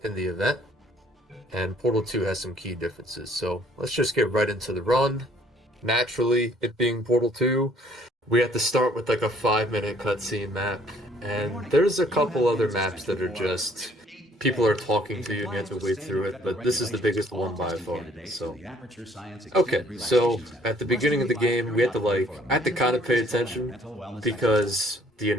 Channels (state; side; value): normal; both; correlation 0.61